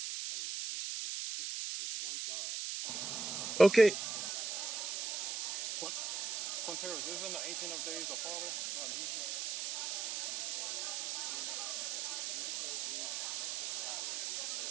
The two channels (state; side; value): noise; right; hiss, 3 dB below the sound